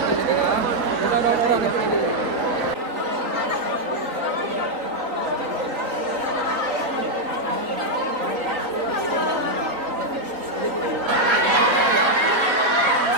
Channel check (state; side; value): late; left; 3.9 ms